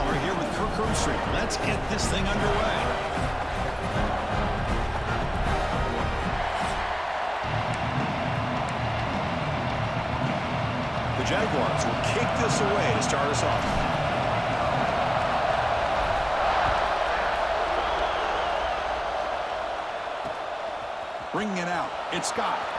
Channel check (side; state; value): both; identical; correlation 1.00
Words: here with Kirk Herbstreit. Let's get this thing underway. The Jaguars will kick this away to start us off. Bringing it out, it's Scott.